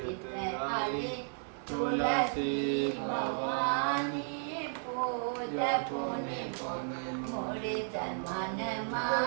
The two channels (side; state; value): left; silent; 55 dB below the other